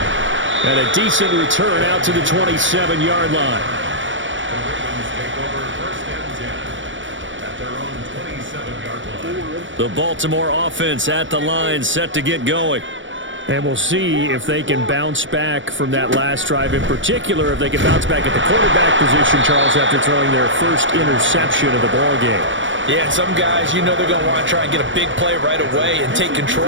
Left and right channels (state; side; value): late; left; 0.56 ms